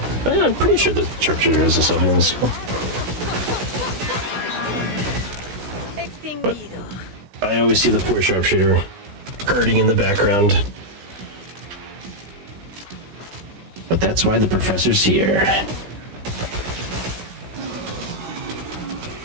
I'm pretty sure the sharpshooter has a self-healing skill. But I always see the poor sharpshooter hurting in the background. But that's why the professor's here.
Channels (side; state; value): left; late; 16 ms